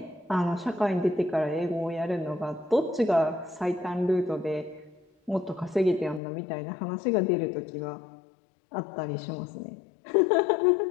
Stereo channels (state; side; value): drops out; right; at 6.2 s